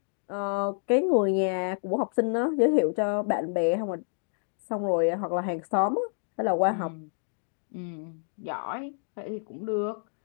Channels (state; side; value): silent; right; digital silence